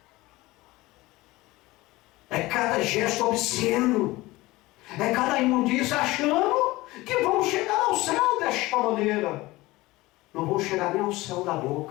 É cada gesto obsceno. É cada imundícia achando que vão chegar ao céu desta maneira. Não vão chegar nem ao céu da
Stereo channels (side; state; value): right; quieter; 19.8 dB